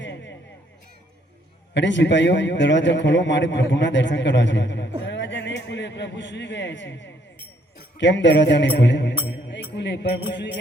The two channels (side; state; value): both; normal; correlation 0.68